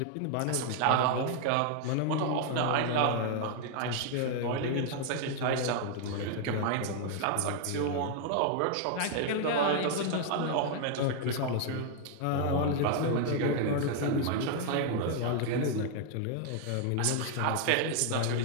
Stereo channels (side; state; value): both; different; correlation 0.00